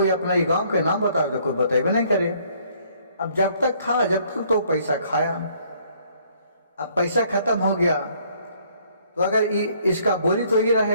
अपना गांव के नाम बताओ तो कोई बताए नहीं करे। अब जब तक था जब तक तो पैसा खाया, अब पैसा खत्म हो गया तो अगर इसका बोली तो ये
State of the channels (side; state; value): both; inverted; correlation -0.63